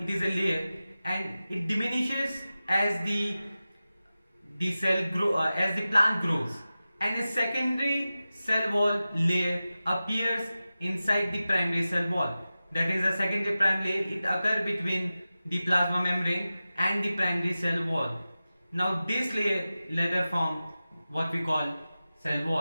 is a layer and it diminishes as the plant grows. And a secondary cell wall layer appears inside the primary cell wall. That is a secondary primary layer. It occurs between the plasma membrane and the primary cell wall. Now this layer later form what we call cell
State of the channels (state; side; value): inverted; both; correlation -0.95